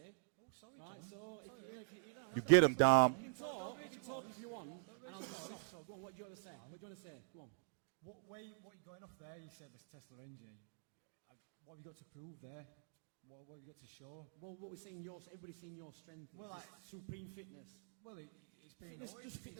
Right, so You get him, Dom. You can talk if you want, and I'll just stop. So go on, what do you want to say? What do you want to say? Come on. What you're going off there, you said this Tesla engine. What have you got to prove there? What have you got to show? Well, what we're seeing, everybody's seeing your strength. Well, like supreme fitness. Well, it's been It's just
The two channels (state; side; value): silent; left; digital silence